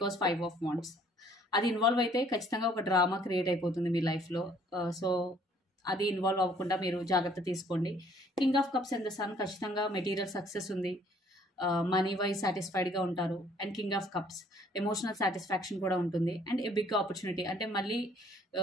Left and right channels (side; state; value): both; normal; correlation 0.60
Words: 5 of Wands అది ఇన్వాల్వ్ అయితే ఖచ్చితంగా ఒక డ్రామా క్రియేట్ అయిపోతుంది మీ లైఫ్లో. సో అది ఇన్వాల్వ్ అవ్వకుండా మీరు జాగ్రత్త తీసుకోండి. King of cups and the sun ఖచ్చితంగా మెటీరియల్ సక్సెస్ ఉంది, మనీ వైజ్ సాటిస్ఫైడ్గా ఉంటారు. And king of cups emotional satisfaction కూడా ఉంటుంది. అండ్ ఏ బిగ్ ఆపర్చునిటీ అంటే మళ్ళీ